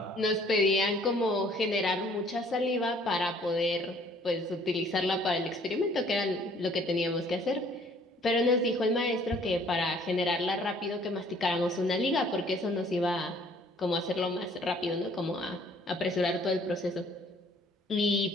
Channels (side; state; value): both; normal; correlation 0.58